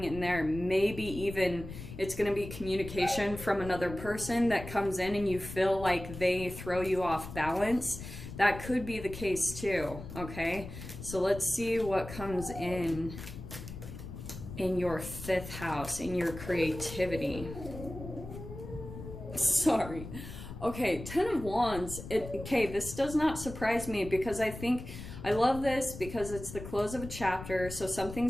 in there. Maybe even it's gonna be communication from another person that comes in and you feel like they throw you off balance. That could be the case too, okay? So let's see what comes in your 5th house, in your creativity. Sorry. Okay, 10 of Wands. Okay, this does not surprise me, because I love this because it's the close of a chapter, so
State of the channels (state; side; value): noise; left; rumble, 11 dB below the sound